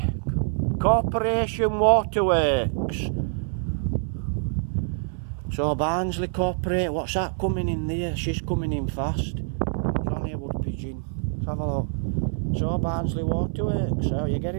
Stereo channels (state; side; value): silent; left; 58 dB below the other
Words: Corporation Waterworks. So Barnsley Corporate, what's that coming in there? She's coming in fast. It's only a wood pigeon. Let's have a look. So Barnsley Waterworks, so you're